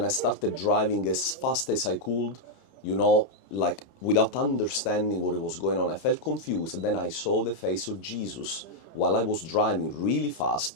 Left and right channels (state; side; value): late; right; 30 ms